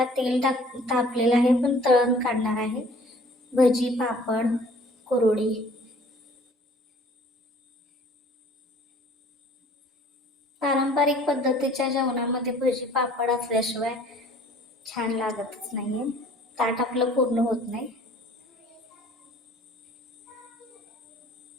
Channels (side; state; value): both; normal; correlation 0.53